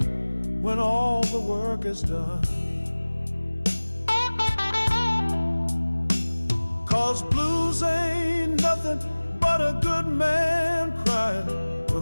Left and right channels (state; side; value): inverted; both; correlation -1.00